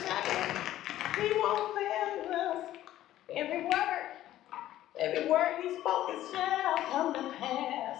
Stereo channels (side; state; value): right; quieter; 13.5 dB